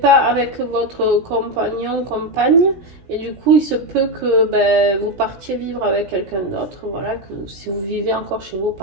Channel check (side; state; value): left; late; 16 ms